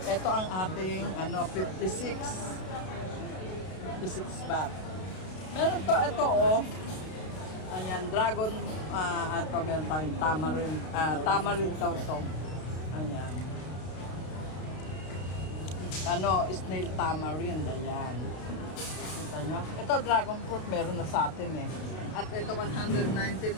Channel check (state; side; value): late; right; 32 ms